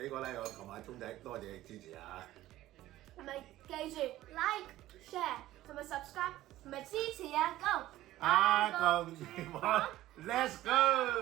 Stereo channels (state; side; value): quieter; left; 15.1 dB